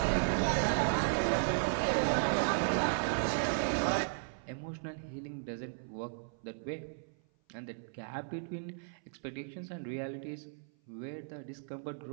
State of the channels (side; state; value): left; silent; 54 dB below the other